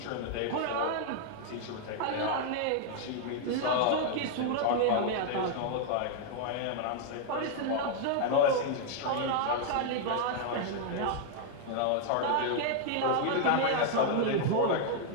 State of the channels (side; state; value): both; different; correlation -0.01